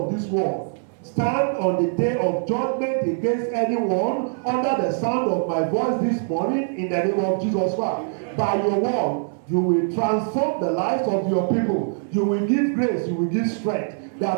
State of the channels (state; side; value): silent; left; 63 dB below the other